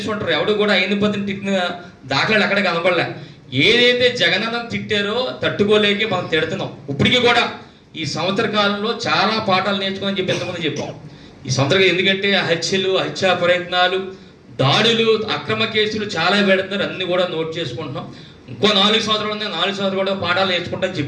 ఎవడు కూడా అయ్యన్న పాత్రుడు తిట్టిన దాఖలాలు ఎక్కడ కనపడలే. ఏదైతే జగనన్న తిట్టారో తట్టుకోలేక మనం తిడుతున్నాం. ఇప్పటికీ కూడా ఈ సంవత్సర కాలంలో చాలా పాఠాలు నేర్చుకోని చెప్పి ఎంతమంది చెప్పాం. ఈ సంవత్సరం ఎందుకంటే హత్యలు, హత్యా ప్రయత్నాలు, దాడులు, అక్రమ కేసులు చాలా పెడుతున్నారు. అన్ని కూడా నోట్ చేసుకుంటున్నాం. ఇంకో 4 సంవత్సరాలు ఉన్నాయి. 4 సంవత్సరాలు కూడా పాఠాలు నేర్చుకుంటాం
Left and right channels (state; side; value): identical; both; correlation 1.00